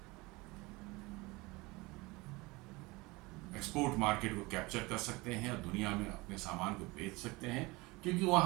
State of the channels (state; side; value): quieter; left; 23.5 dB